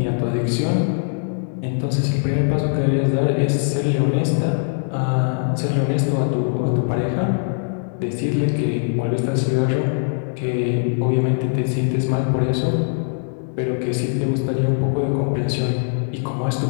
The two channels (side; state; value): right; silent; 65 dB below the other